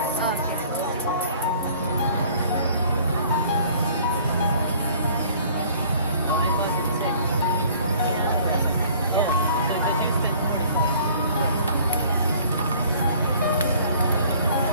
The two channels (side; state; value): both; inverted; correlation -0.54